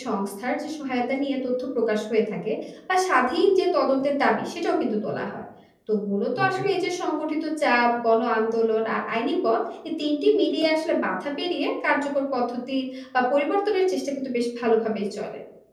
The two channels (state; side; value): identical; both; correlation 1.00